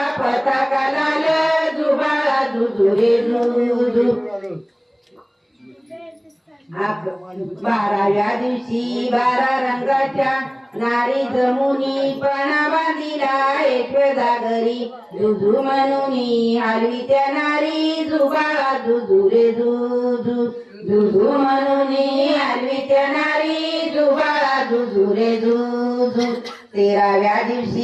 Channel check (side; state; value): both; identical; correlation 1.00